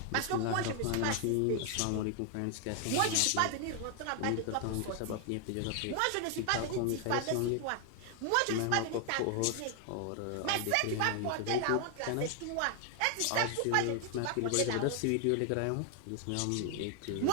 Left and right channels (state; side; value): different; both; correlation 0.00